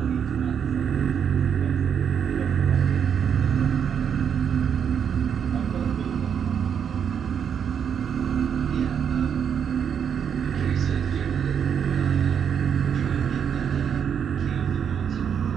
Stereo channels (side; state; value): left; quieter; 7.8 dB